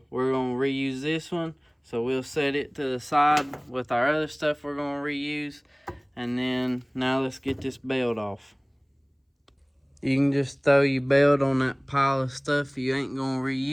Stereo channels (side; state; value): both; identical; correlation 1.00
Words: we're gonna reuse this one. So we'll set it to the side with our other stuff we're gonna reuse, and then now let's get this belt off. You can just throw your belt on that pile of stuff you ain't gonna